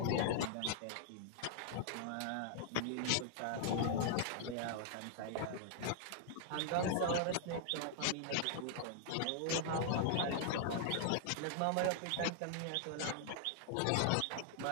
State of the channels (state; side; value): different; both; correlation -0.01